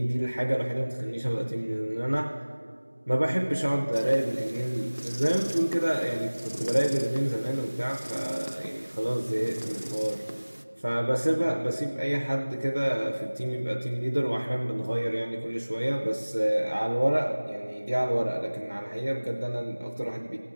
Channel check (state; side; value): inverted; both; correlation -1.00